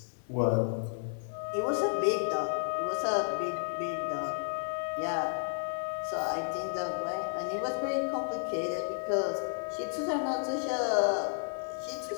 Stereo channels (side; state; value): right; silent; digital silence